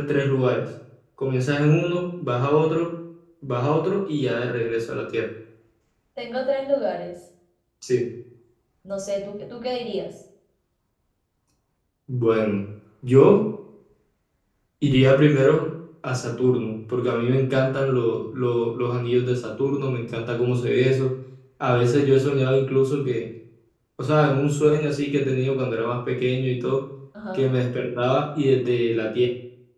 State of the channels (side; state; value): both; identical; correlation 1.00